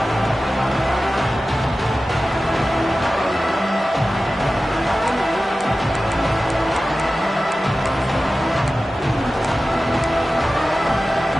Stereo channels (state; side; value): normal; both; correlation 0.95